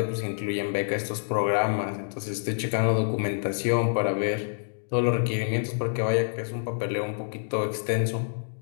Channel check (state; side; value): silent; right; digital silence